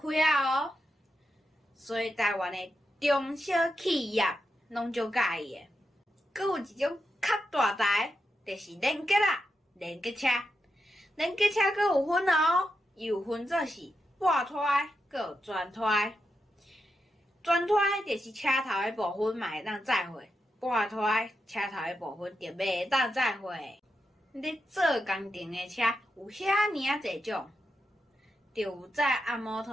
啊哦。所以台湾的中小企业拢足介意的。阁有一种较大台，就是连结啦，连结车。连结车阁有分哦，伊有分做是半拖，阁有全拖。全拖就是车头的部分嘛会当载货，半拖车头的部分就袂当载货。咧做工程的车有遐尔啊侪种，就有载按摩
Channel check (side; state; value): both; normal; correlation 0.86